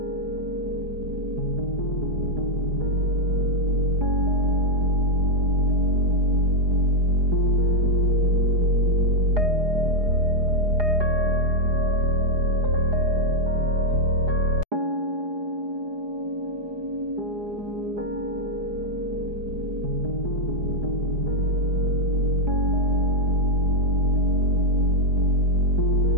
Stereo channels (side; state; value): left; late; 4.8 ms